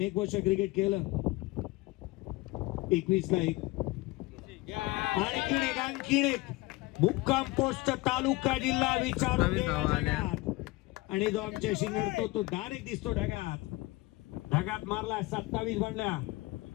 वर्ष क्रिकेट केलं. 21ला 1. आणखीन एक मुक्काम पोस्ट तालुका जिल्हा विचारून आणि जो आमच्याशी नडतो तो डायरेक्ट दिसतो ढगात मारला. 27 बनल्या.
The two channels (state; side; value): quieter; right; 21.2 dB